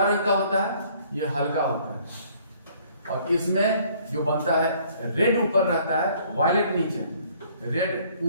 रंग का होता है, यह हल्का होता है। और इसमें जो बनता है रेड ऊपर रहता है, वायलेट नीचे, रेड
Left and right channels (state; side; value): inverted; both; correlation -0.59